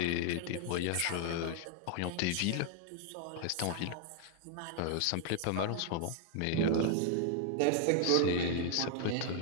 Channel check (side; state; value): both; different; correlation 0.00